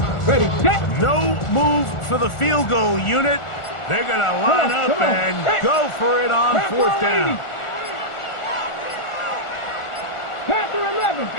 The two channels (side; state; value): right; late; 1.4 ms